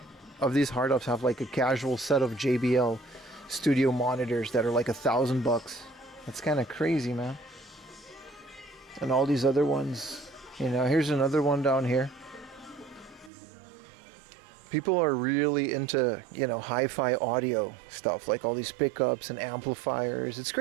of these hard ups have like a casual set of JBL studio monitors that are like $1,000. That's kind of crazy, man. And all these other ones, you know. Here's another one down here. People are really into, you know, hi-fi audio stuff, like all these pickups and amplifiers. It's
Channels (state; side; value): drops out; left; at 13.3 s